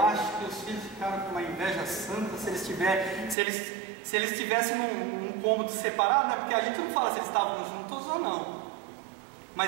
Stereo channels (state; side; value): drops out; left; at 3.4 s